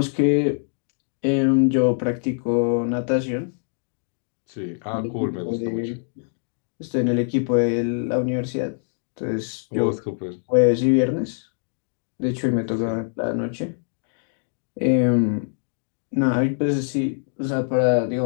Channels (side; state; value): right; silent; digital silence